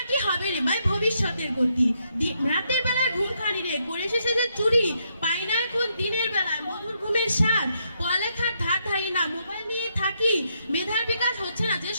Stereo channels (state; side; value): inverted; both; correlation -0.77